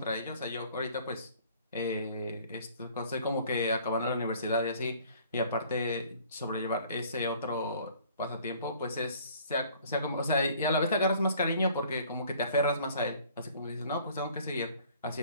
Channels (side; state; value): both; inverted; correlation -0.55